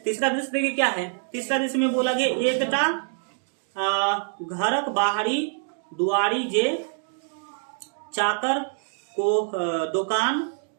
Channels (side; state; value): left; silent; 61 dB below the other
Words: तीसरा दृश्य देखिए क्या है। तीसरा दृश्य में बोला गया एकटा घरक बाहरी दुआरी जे चाकर को दुकान